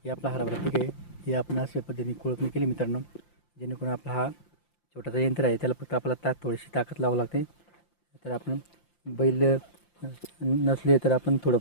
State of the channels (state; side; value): late; right; 5.8 ms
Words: हे आपला हरभरा पीक आहे. हे आपण अशा पद्धतीने कोळपणी केली मित्रांनो, जेणेकरून आपला हा छोटासा यंत्र आहे, त्याला फक्त आपल्याला थोडीशी ताकद लावावी लागते. तर आपण बैल नसले तर आपण